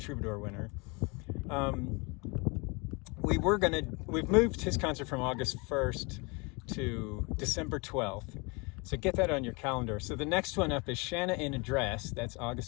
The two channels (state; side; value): quieter; right; 29.0 dB